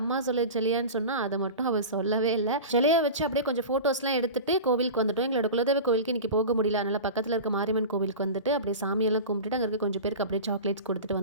சொல்லு செல்லியான்னு சொன்னால் அதை மட்டும் அவள் சொல்லவே இல்லை. செல்லியா வச்சு அப்படியே கொஞ்சம் ஃபோட்டோஸ்லாம் எடுத்துட்டு கோவிலுக்கு வந்துட்டோம். எங்களோட குலதெய்வ கோவிலுக்கு இன்றைக்கி போக முடியல. அதனால் பக்கத்தில் இருக்க மாரியம்மன் கோவிலுக்கு வந்துட்டு அப்படியே சாமியெல்லாம் கும்பிட்டுட்டு அங்கே இருக்க கொஞ்சம் பேருக்கு அப்படியே சாக்லேட்ஸ் கொடுத்துட்டு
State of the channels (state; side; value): inverted; both; correlation -0.30